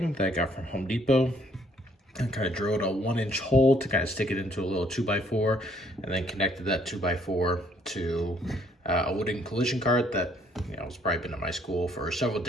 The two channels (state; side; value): normal; both; correlation 0.65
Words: that I got from Home Depot, and kind of drilled a 1-inch hole to kind of stick it into a little 2x4, and then connected that 2x4 to a wooden collision cart that has probably been at my school for several